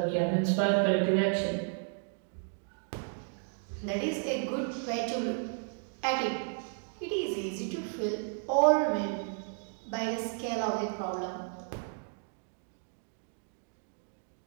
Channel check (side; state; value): left; silent; 56 dB below the other